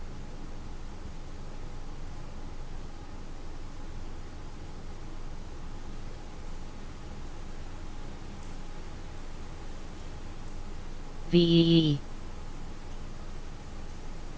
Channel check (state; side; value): identical; both; correlation 1.00